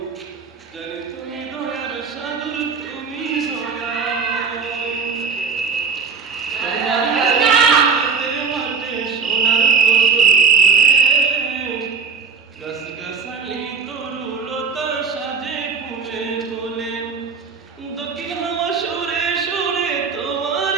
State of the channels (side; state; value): left; quieter; 5.5 dB